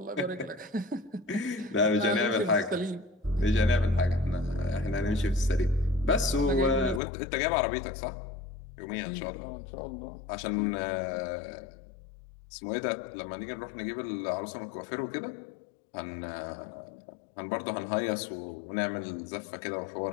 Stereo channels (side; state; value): right; drops out; at 7.0 s